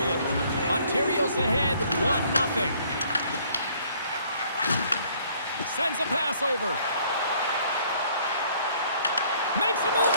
Ontario's ahead 1-0. Sends a pass over. Makes a move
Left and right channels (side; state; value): both; inverted; correlation -0.61